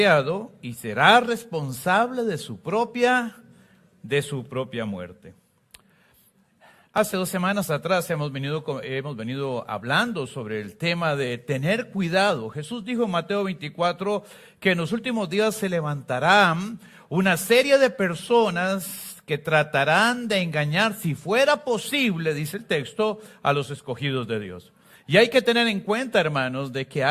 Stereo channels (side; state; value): both; identical; correlation 1.00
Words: y será responsable de su propia muerte. Hace 2 semanas atrás hemos venido hablando sobre el tema de tener cuidado. Jesús dijo en Mateo 24 que en los últimos días se levantarán una serie de personas que tratarán de engañar, si fuera posible, dice el texto, a los escogidos de Dios. Y hay que tener en cuenta, hermanos, de que